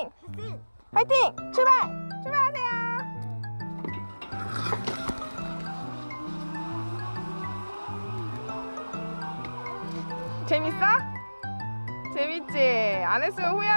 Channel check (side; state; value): both; inverted; correlation -1.00